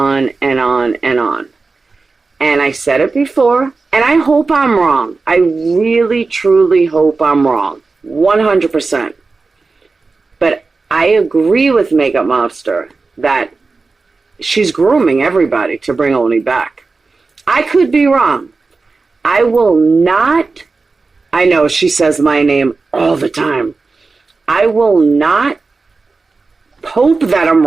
and on and on. And I said it before, and I hope I'm wrong. I really, truly hope I'm wrong. 100%. But I agree with Makeup Mobster that she's grooming everybody to bring Oni back. I could be wrong. I will not, I know she says my name all the time. I will not hope that I'm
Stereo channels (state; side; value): quieter; left; 4.0 dB